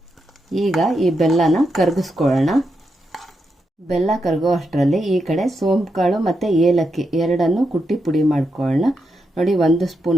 ಈಗ ಈ ಬೆಲ್ಲನ ಕರಗಿಸ್ಕೊಳ್ಳೋಣ. ಬೆಲ್ಲ ಕರಗೋ ಅಷ್ಟರಲ್ಲಿ ಈ ಕಡೆ ಸೋಂಪು ಕಾಳು ಮತ್ತು ಏಲಕ್ಕಿ ಎರಡನ್ನು ಕುಟ್ಟಿ ಪುಡಿ ಮಾಡ್ಕೊಳ್ಳೋಣ. ನೋಡಿ, 1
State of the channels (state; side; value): normal; both; correlation 0.84